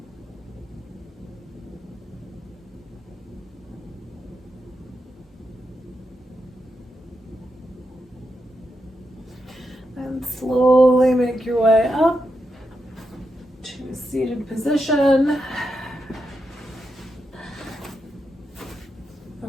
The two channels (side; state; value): both; normal; correlation 0.85